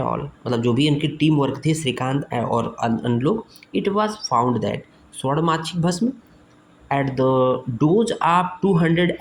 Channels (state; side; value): identical; both; correlation 1.00